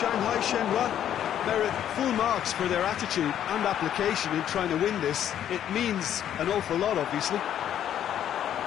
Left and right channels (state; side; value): quieter; right; 10.4 dB